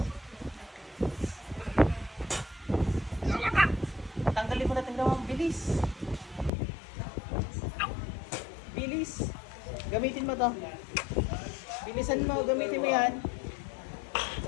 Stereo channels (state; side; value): drops out; right; at 6.5 s